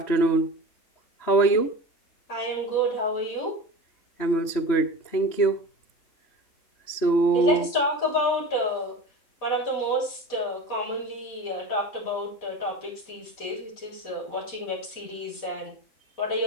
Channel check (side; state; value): right; late; 3.2 ms